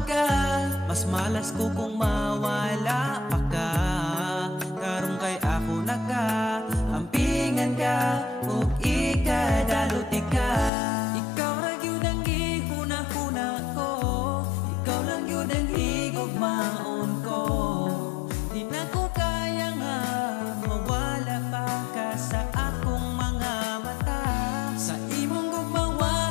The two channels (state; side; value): drops out; right; at 10.7 s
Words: ka, mas malas ko kung mawala pa ka. Karong kay ako naka, ampingan ka, ug ikadalot ka. Ikaw ra gyud ang gihuna-huna ko, ikaw lang gyud ang higugmaon ko. Di na ko kaya nga mawala pa ka sa akong